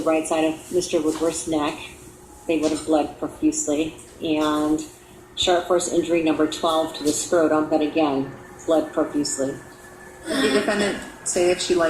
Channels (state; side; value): identical; both; correlation 1.00